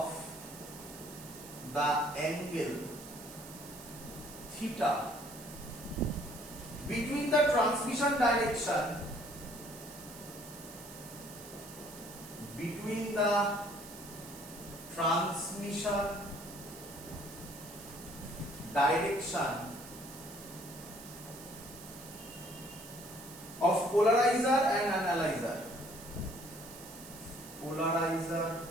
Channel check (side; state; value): right; noise; hiss, 15 dB below the sound